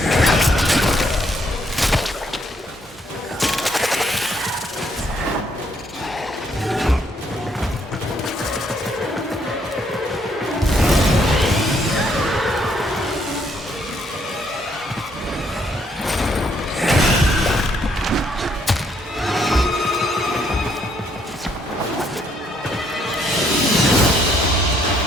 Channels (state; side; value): normal; both; correlation 0.70